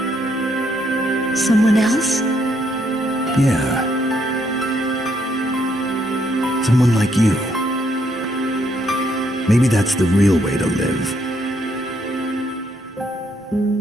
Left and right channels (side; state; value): both; normal; correlation 0.73